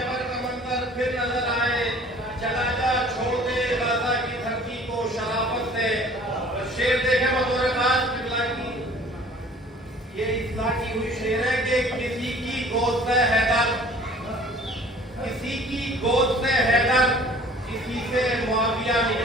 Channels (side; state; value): both; normal; correlation 0.50